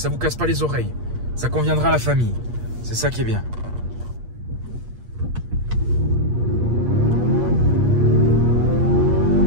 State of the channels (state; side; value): late; left; 8.5 ms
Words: vous casse pas les oreilles. Ça conviendra à la famille. C'est ça qui est bien.